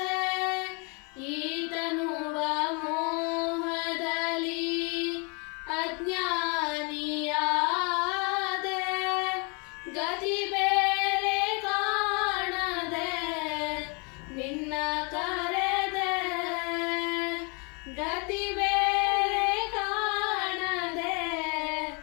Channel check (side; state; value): right; quieter; 33.0 dB